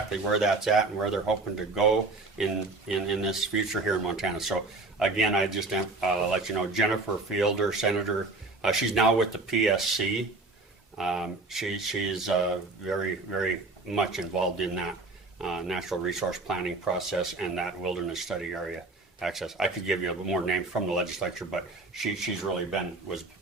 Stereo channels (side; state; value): left; quieter; 3.3 dB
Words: where that's at and where they're hoping to go in this future here in Montana. So again, I just let you know, Jennifer Fielder, Senator, she's now with the PSC. She's very, very much involved in that natural resource planning process and that wilderness study area access. I could give you more names from the legislature, but she's really was